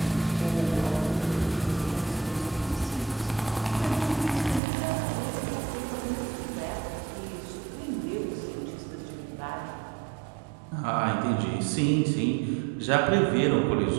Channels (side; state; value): left; drops out; at 4.6 s